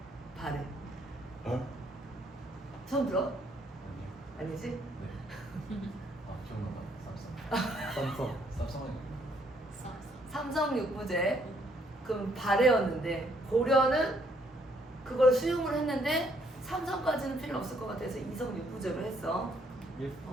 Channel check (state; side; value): normal; both; correlation 0.68